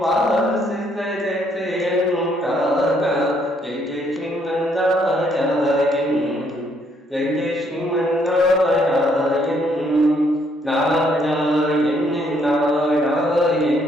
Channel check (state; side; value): normal; both; correlation 0.69